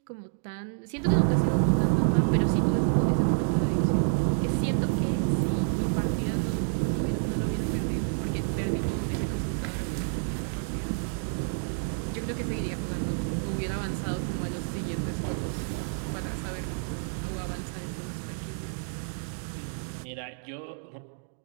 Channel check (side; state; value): left; silent; digital silence